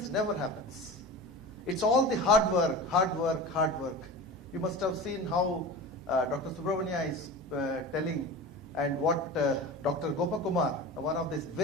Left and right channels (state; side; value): normal; both; correlation 0.32